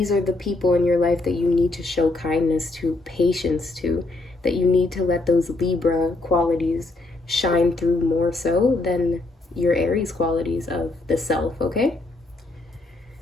are the people in your life that you need to show kindness to, patience to, that you need to let those Libra qualities shine through more so than your Aries qualities of the self, okay?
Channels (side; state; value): right; quieter; 3.1 dB